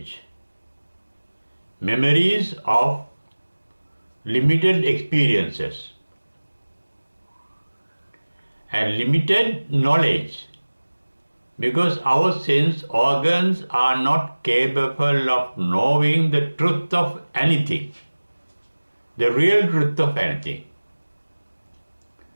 Memories of limited experiences and limited knowledge, because our sense organs are not capable of knowing the truth of anything, the real truth of anything.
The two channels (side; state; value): both; inverted; correlation -1.00